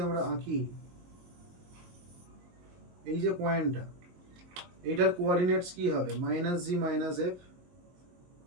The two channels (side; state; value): left; late; 22 ms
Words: আমরা আঁকি, এই যে পয়েন্টটা, এইটার কোঅর্ডিনেটস কি হবে? -G - F,